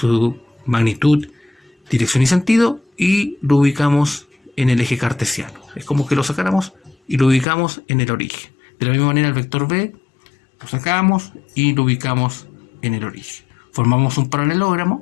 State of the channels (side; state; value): right; drops out; at 7.5 s